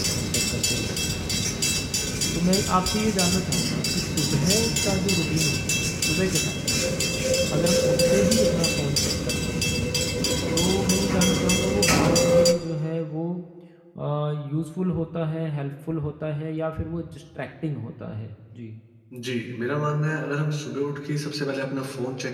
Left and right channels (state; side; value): identical; both; correlation 1.00